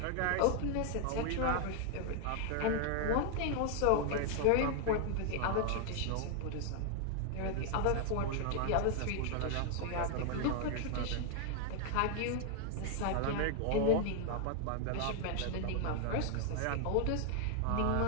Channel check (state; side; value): different; both; correlation 0.00